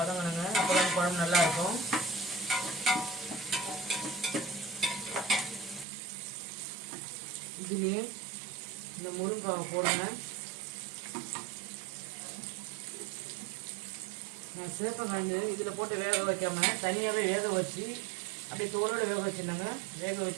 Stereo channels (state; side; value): drops out; left; at 5.9 s